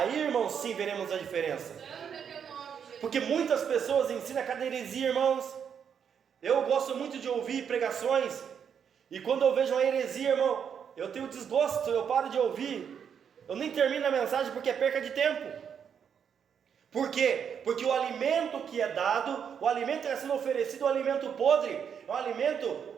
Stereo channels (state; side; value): quieter; left; 7.6 dB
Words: irmãos, sim, veremos a diferença. Santo é teu nome, Jesus. Porque muitas pessoas ensinam cada heresia, irmãos. Eu gosto muito de ouvir pregações, e quando eu vejo uma heresia, irmão, eu tenho desgosto, eu paro de ouvir, eu nem termino a mensagem porque é perca de tempo. Por quê? Porque o alimento que é dado, o alimento que está sendo oferecido, é um alimento podre, é um alimento